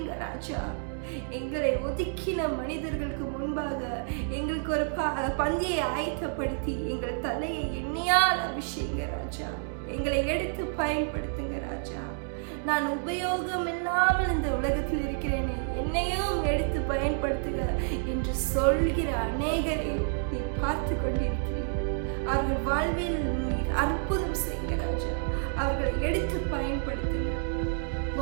ராஜா. எங்களை ஒதுக்கின மனிதர்களுக்கு முன்பாக எங்களுக்கு ஒரு பந்தியை ஆயத்தப்படுத்தி எங்கள் தலையை எண்ணெயால் அபிஷேக ராஜா. எங்களை எடுத்து பயன்படுத்துங்க ராஜா. நான் உபயோகம் இல்லாமல் இந்த உலகத்தில் இருக்கிறேனே, என்னையும் எடுத்து பயன்படுத்துக என்று சொல்கிற அநேகரை நீ பார்த்து கொண்டிருக்கிறீர். அவர்கள் வாழ்வில் நீர் அற்புதம் செய்யுங்க ராஜா. அவர்களை எடுத்து பயன்படுத்துங்க.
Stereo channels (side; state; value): left; silent; 58 dB below the other